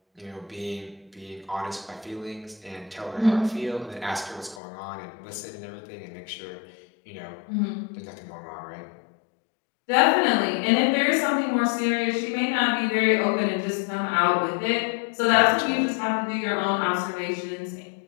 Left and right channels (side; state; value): right; drops out; at 4.6 s